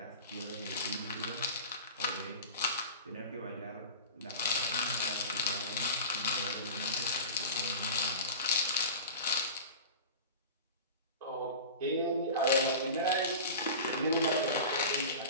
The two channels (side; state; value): both; inverted; correlation -0.33